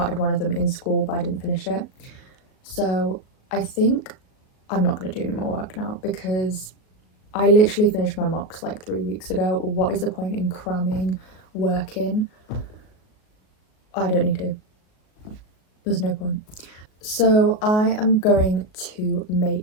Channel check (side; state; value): right; late; 38 ms